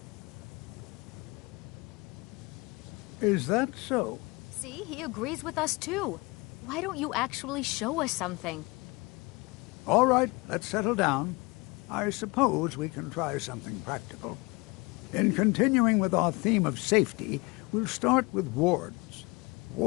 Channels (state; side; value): quieter; right; 25.9 dB